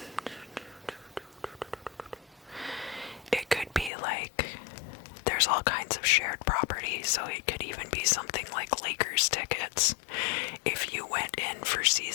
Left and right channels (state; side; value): drops out; right; at 3.9 s